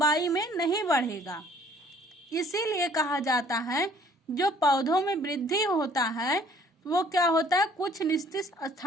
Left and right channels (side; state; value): both; normal; correlation 0.57